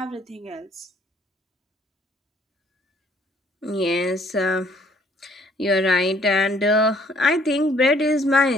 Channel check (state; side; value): normal; both; correlation 0.62